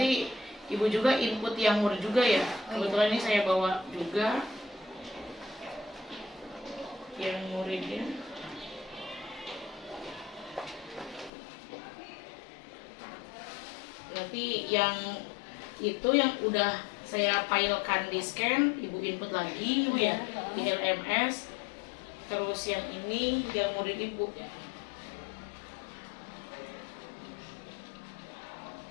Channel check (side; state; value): right; drops out; at 11.3 s